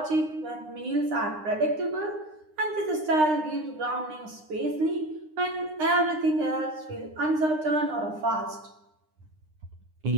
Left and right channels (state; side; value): late; left; 9.8 ms